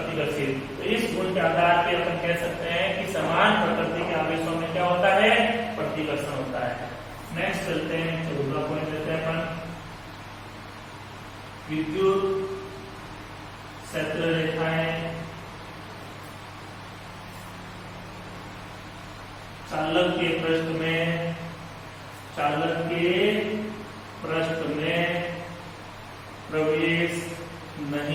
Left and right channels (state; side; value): identical; both; correlation 1.00